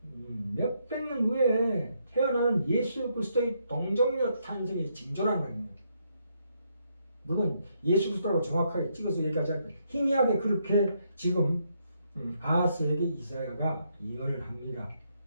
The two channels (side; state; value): both; inverted; correlation -0.76